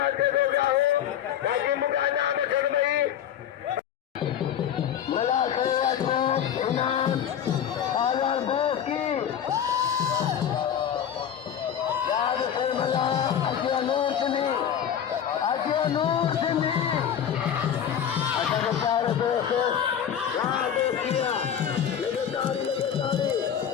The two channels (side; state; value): right; quieter; 9.1 dB